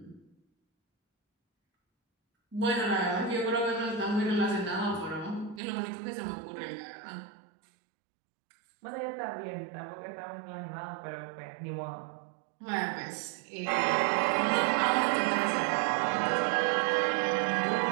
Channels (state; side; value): drops out; left; at 5.6 s